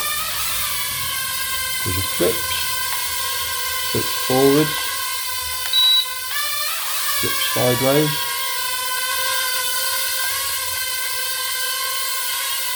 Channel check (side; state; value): both; identical; correlation 1.00